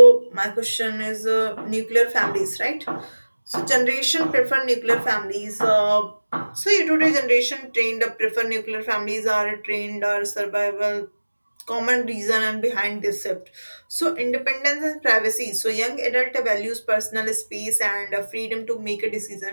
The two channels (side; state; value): both; inverted; correlation -1.00